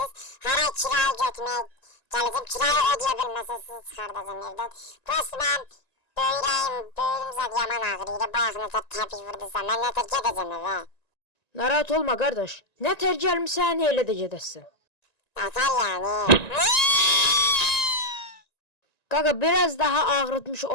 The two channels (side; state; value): right; late; 1.9 ms